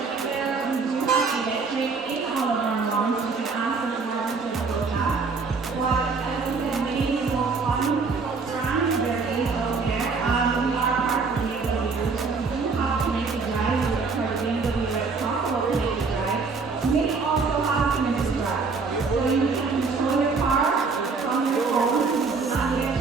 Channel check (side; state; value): left; quieter; 4.6 dB